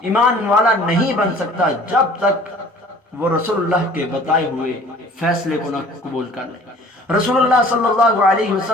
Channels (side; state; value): both; normal; correlation 0.50